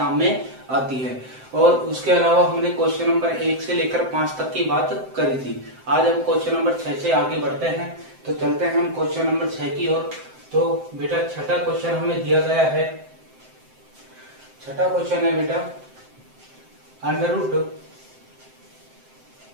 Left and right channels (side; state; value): left; late; 7.7 ms